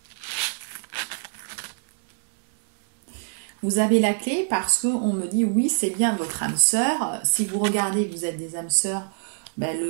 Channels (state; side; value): silent; left; digital silence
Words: Vous avez la clé parce qu'on me dit oui, c'est bien votre âme sœur. Si vous regardez, vous êtes des âmes sœurs, ben